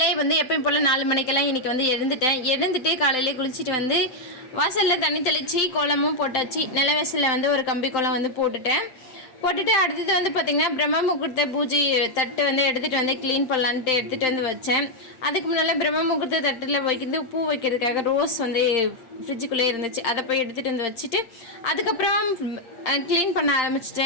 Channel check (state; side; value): late; right; 8.7 ms